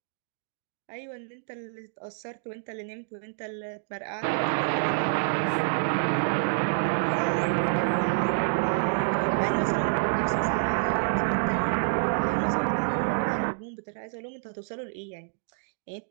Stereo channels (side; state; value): left; silent; digital silence